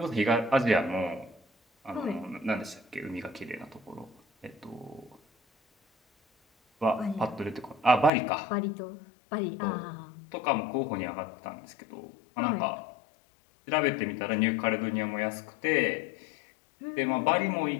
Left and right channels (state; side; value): drops out; right; at 8.1 s